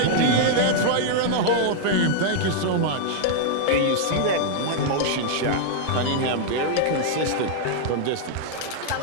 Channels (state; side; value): different; both; correlation -0.01